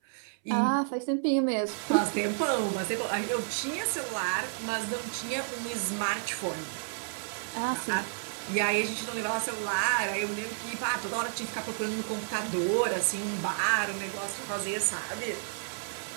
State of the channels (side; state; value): left; silent; 57 dB below the other